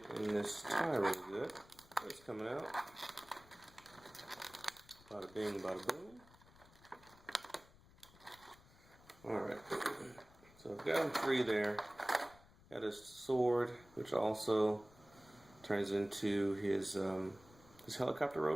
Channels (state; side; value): noise; left; rumble, 24 dB below the sound